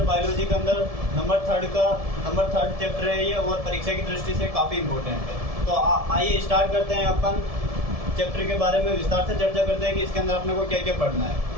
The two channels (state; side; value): late; left; 1.7 ms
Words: बायोलॉजी के अंदर नंबर थर्ड चैप्टर है ये, और परीक्षा की दृष्टि से काफ़ी इंपॉर्टेंट है। तो आइए स्टार्ट करते हैं अपन चैप्टर के बारे में विस्तार से चर्चा करते हैं कि इसके अंदर अपने को क्या क्या पढ़ना है।